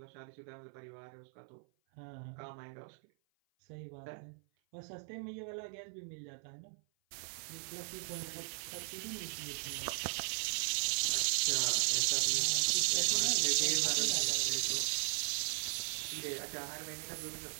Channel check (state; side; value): silent; left; 53 dB below the other